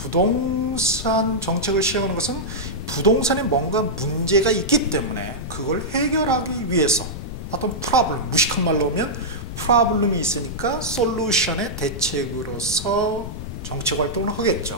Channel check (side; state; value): left; noise; rumble, 9 dB below the sound